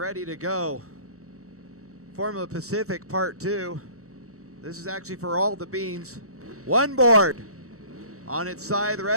to go. Formula Pacific Part 2. This is actually for all the beans. One board. On its side, the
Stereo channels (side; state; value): left; late; 0.65 ms